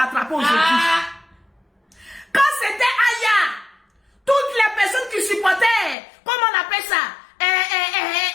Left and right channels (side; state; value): right; drops out; at 6.0 s